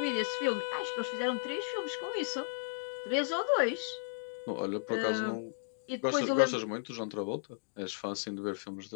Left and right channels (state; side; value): silent; right; digital silence